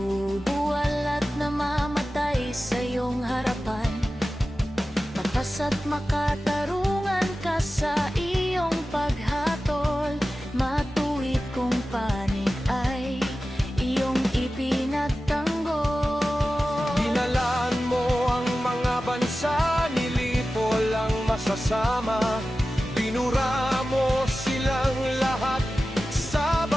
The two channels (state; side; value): normal; both; correlation 0.95